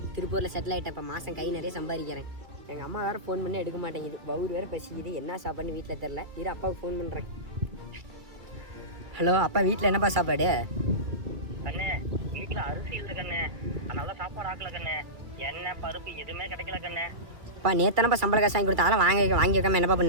திருப்பூரில் செட்டில் ஆகிட்டேன். இப்போ மாதம் கை நிறைய சம்பாதிக்கிறேன். எங்கள் அம்மா வேறு ஃபோன் பண்ணி எடுக்க மாட்டேங்குது, பவுர் வேறு பசிக்குது, என்ன சாப்பாடுன்னு வீட்டில் தெரில. இரு அப்பாவுக்கு ஃபோன் பண்ணுறேன். ஹலோ அப்பா, வீட்டில் என்னப்பா சாப்பாடு? கண்ணே, வீட்டில் அரிசி இல்லை கண்ணே, அதனால சாப்பாடு ஆக்கல கண்ணே, எண்ணெய் பருப்பு எதுவுமே கிடைக்கல கண்ணே. அப்பா நேத்தானப்பா சம்பள காசு வாங்கி கொடுத்தா, அதெல்லாம் வாங்கி வைக்காம என்னப்பா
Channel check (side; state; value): left; late; 2.2 ms